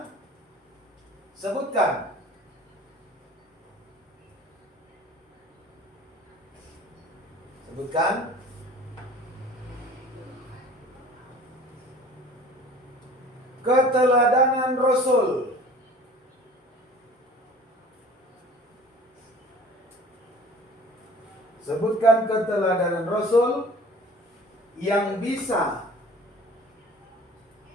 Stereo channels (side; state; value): both; normal; correlation 0.46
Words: sebutkan keteladanan Rasul. Sebutkan keteladanan Rasul yang bisa